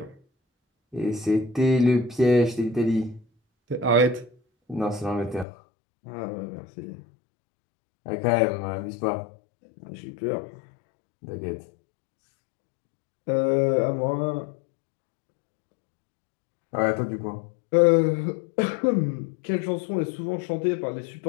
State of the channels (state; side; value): drops out; right; at 5.5 s